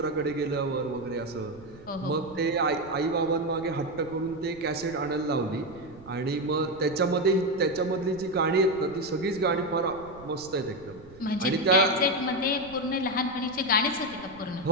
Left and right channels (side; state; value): right; noise; rumble, 21 dB below the sound